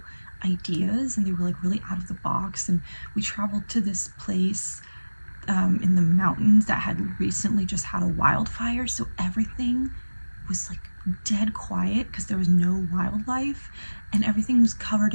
ideas, and they were like really out of the box. And we traveled to this place in the mountains that had recently just had a wildfire, so everything was like dead quiet because there was no wildlife, and everything was covered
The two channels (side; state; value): both; inverted; correlation -1.00